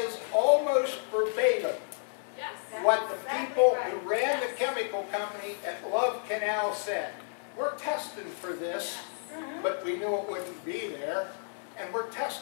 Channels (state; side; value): silent; right; digital silence